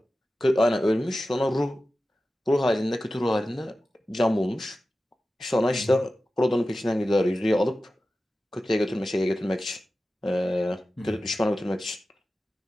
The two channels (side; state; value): both; normal; correlation 0.94